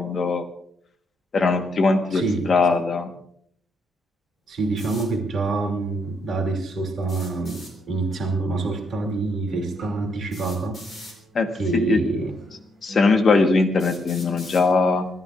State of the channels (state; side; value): normal; both; correlation 0.76